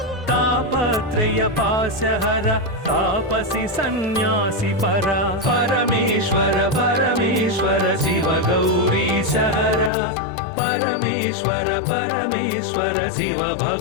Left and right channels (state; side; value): drops out; right; at 9.9 s